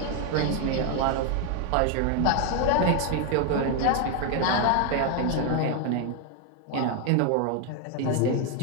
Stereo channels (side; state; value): both; different; correlation 0.01